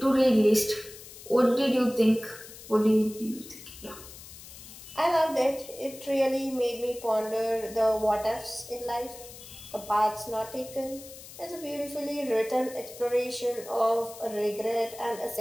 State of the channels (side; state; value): left; noise; hiss, 16 dB below the sound